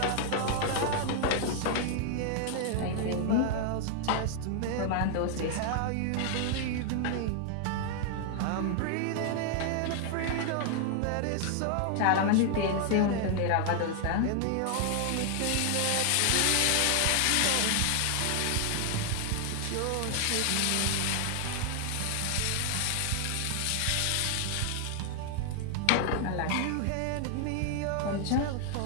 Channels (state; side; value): different; both; correlation 0.00